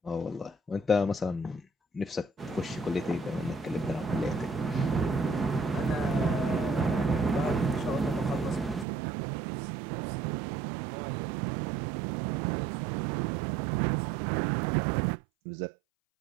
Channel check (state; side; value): drops out; left; at 8.8 s